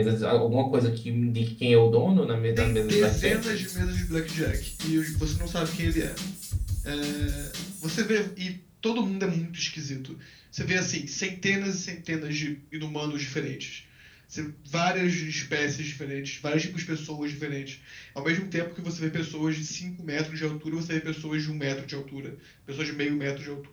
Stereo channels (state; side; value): identical; both; correlation 1.00